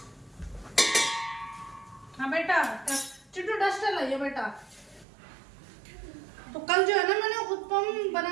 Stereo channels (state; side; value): drops out; left; at 5.1 s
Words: हाँ बेटा, चिट्टू डस्टर लाइए बेटा। तो कल जो है ना मैंने उत्पम